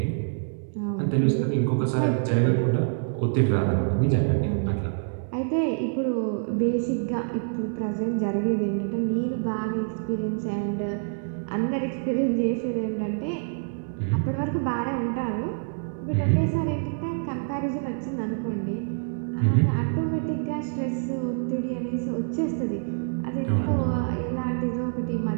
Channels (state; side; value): silent; left; digital silence